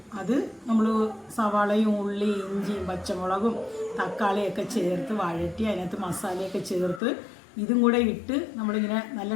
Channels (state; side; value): drops out; right; at 7.0 s